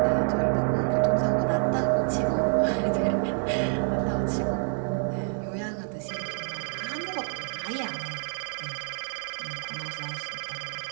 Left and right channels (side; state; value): left; silent; 60 dB below the other